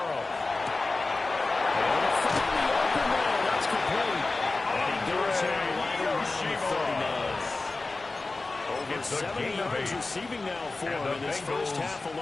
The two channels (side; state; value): right; quieter; 3.4 dB